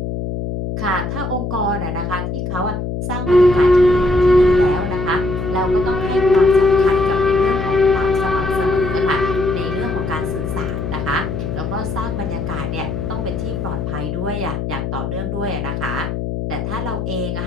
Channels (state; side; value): noise; left; hum, 4 dB below the sound